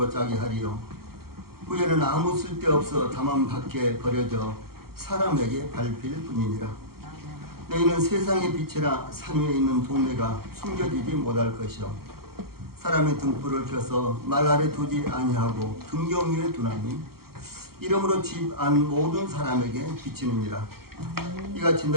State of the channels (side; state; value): left; late; 0.94 ms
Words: 짜게 하리요? 후에는 아무 쓸데없어 다만 밖에 버려져 사람에게 밟힐 뿐이니라. 너희는 세상의 빛이라 산 위에 있는 동네가 숨겨지지 못할 것이요 사람의 등불을 켜서 말 아래 두지 아니하고 등경 위에 두나니 이러므로 집 안 모든 사람에게 비치느니라. 이같이